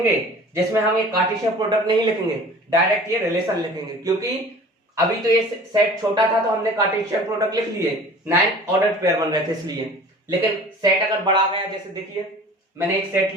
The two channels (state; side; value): normal; both; correlation 0.43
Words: जिसमें हम ये कार्टेशियन प्रोडक्ट नहीं लिखेंगे, डायरेक्ट ये रिलेशन लिखेंगे। क्योंकि अभी तो ये सेट छोटा था तो हमने कार्टेशियन प्रोडक्ट लिख लिए, 9 ऑर्डर पेयर बन रहे थे इसलिए। लेकिन सेट अगर बढ़ा गया, जैसे देखिए मैंने एक सेट